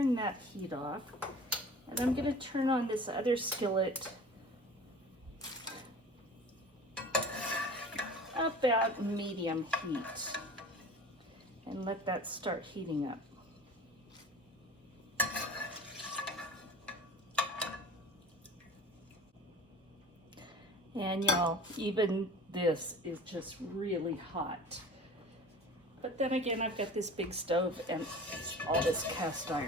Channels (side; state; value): both; normal; correlation 0.40